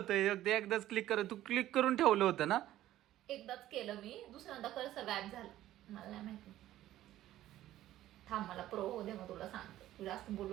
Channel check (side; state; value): left; quieter; 13.9 dB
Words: एकदाच क्लिक कर. तू क्लिक करून ठेवलं होतं ना? एकदाच केलं मी. दुसऱ्यांदा कर्सर गायब झालं. मला नाही माहिती. थांब मला प्रो हो दे मग तुला सांगते. तू जास्त